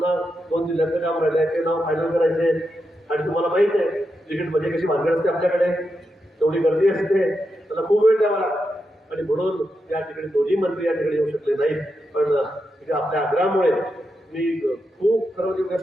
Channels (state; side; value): normal; both; correlation 0.86